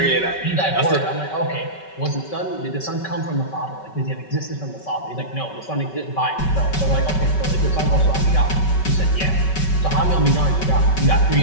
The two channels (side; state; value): right; late; 5.3 ms